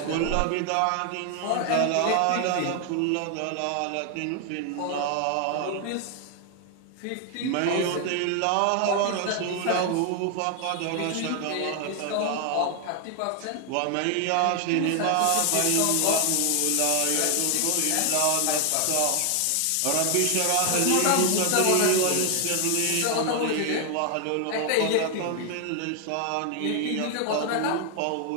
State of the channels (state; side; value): different; both; correlation 0.00